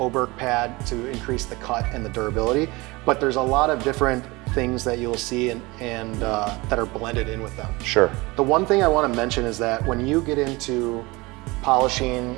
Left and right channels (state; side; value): quieter; left; 23.4 dB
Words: pad to increase the cut and the durability, but there's a lot of different things that you'll see and that are blended in with them. Sure. The one thing I want to mention is that when you get into